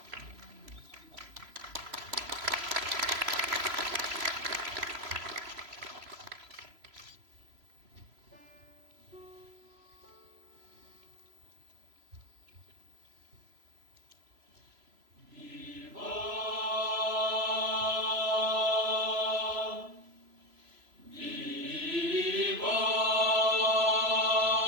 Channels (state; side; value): late; left; 3.0 ms